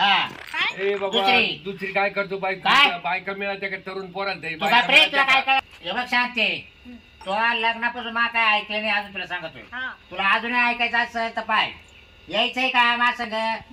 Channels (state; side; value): identical; both; correlation 1.00